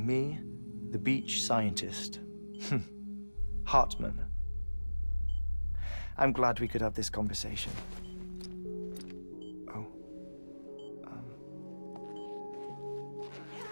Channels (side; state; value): both; inverted; correlation -1.00